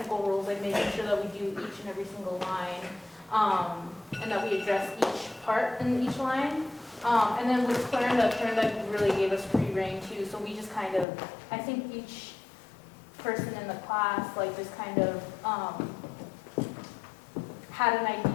like making sure that we do each and every single line, and that we address each part in each line. And then with Clorinda really gave us free reign too, so we just kind of, I think each person in the class like just kind of had an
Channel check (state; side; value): drops out; right; at 11.1 s